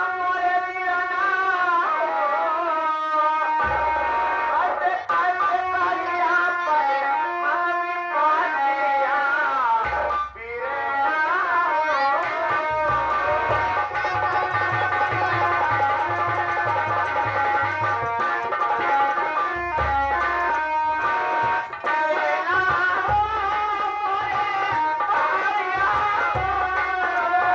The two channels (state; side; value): identical; both; correlation 1.00